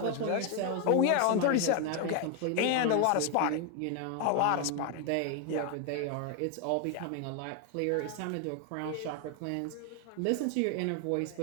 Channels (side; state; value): both; different; correlation 0.01